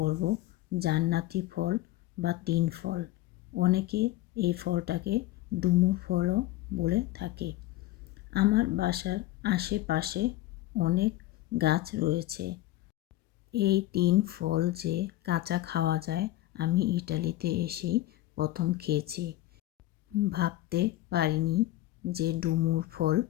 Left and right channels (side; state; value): right; quieter; 15.9 dB